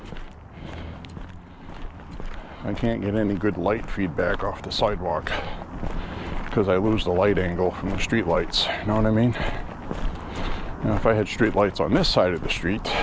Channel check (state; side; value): identical; both; correlation 1.00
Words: I can't get any good light feedback off the sidewalk because I lose the light angle from the street lights. You know what I mean? Now, if I had street lights on this side of the street,